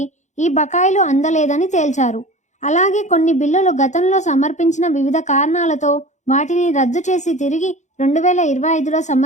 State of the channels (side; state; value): right; late; 0.34 ms